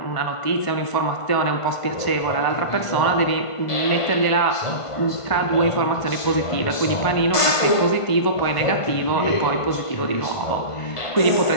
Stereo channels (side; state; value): right; late; 1.5 ms